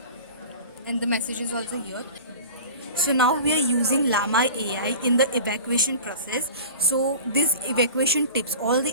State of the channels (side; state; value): both; inverted; correlation -0.37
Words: and the message is also here. So now we are using Llama AI in the evacuation process. So these evacuation tips, all